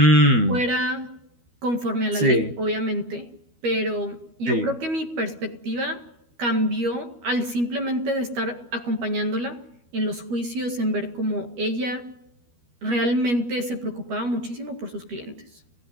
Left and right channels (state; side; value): late; left; 13 ms